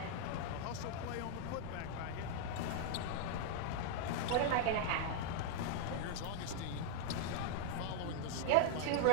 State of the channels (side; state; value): both; different; correlation -0.01